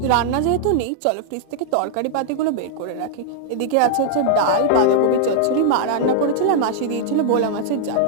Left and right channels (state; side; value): different; both; correlation -0.01